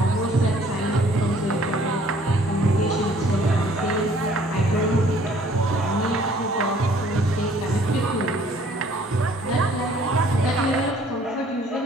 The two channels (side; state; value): both; normal; correlation 0.58